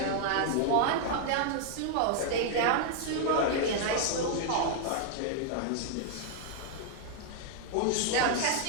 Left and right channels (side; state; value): both; different; correlation 0.00